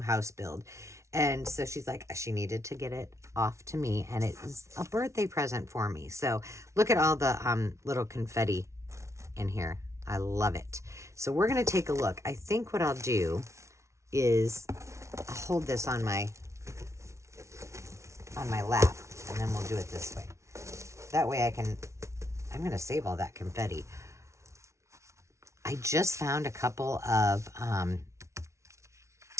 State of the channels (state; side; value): late; left; 0.14 ms